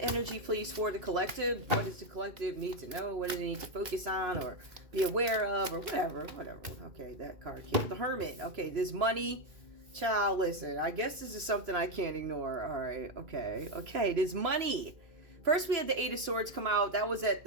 energy, please, for the collective. What does the collective need to know? What do they need to focus on or be aware of or whatever? Okay, that card came. The Hermit. Okay, there's money. Child, listen. I guess this is something I can't ignore. All right. Okay, there's money. First, we had the Eight of Swords come out. That was at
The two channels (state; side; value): late; left; 2.5 ms